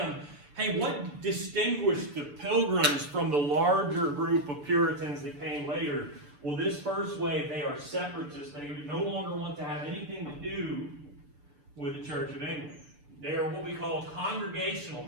hey, what distinguished the Pilgrims from the larger group of Puritans that came later? Well, this first wave, they are separatists. They no longer want to have anything to do with the Church of England. They are what we call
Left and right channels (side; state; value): left; late; 6.9 ms